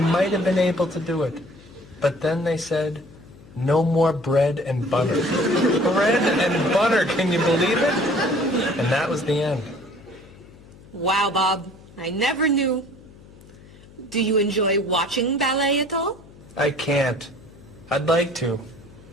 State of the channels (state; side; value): noise; left; hum, 22 dB below the sound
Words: might have been able to do it. But then they said, no more bread and butter. Bread and butter, can you believe it? And that was the end. Wow, Bob. I never knew. Do you enjoy watching ballet at all? I can't. I'd like to.